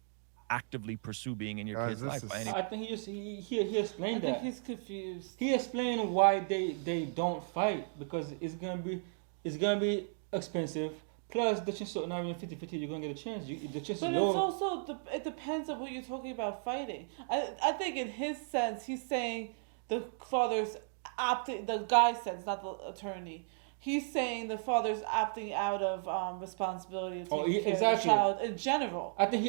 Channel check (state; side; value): silent; left; digital silence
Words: actively pursue being in your Guys, kid's this life. is- by any- I think he explained I think that. he's confused. He explained why they don't fight because it's gonna be expensive. Plus, the chance of not even 50-50, you're gonna get a chance. The chance But is it's low. also it depends on what you're talking about fighting. I think in his sense, he's saying the father's opting. The guy sense, not the attorney. He's saying the father's opting out of responsibility of taking care of the exactly. child in general. I